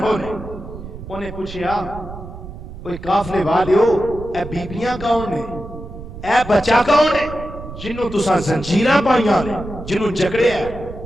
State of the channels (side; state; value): right; noise; rumble, 12 dB below the sound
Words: نے انہیں پوچھیا اوے قافلے والیو اے بیبیاں کون نے اے بچہ کون ہے جنوں تساں زنجیراں پائیاں جنوں جکڑیا ہے؟